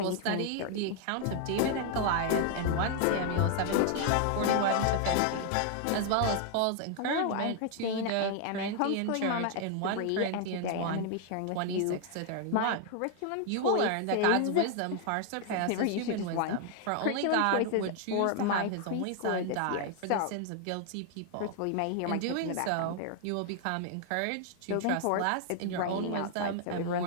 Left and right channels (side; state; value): both; different; correlation 0.00